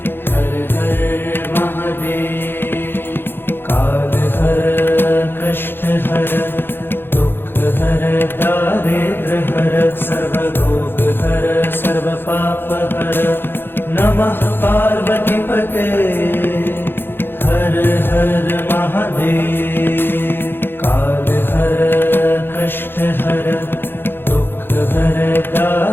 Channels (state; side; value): late; right; 0.10 ms